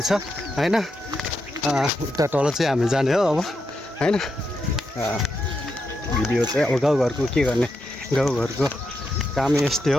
हैन। उता तल चाहिँ हामी जाने हो अब हैन। भिडियो चाहिँ अब गाउँघरको के गर्ने, गाउँघरको काम यस्तै हो।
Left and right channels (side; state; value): both; normal; correlation 0.84